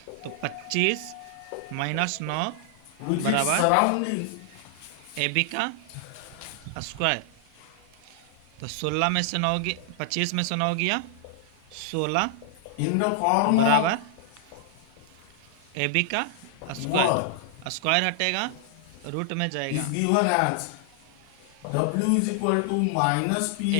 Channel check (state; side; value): different; both; correlation 0.00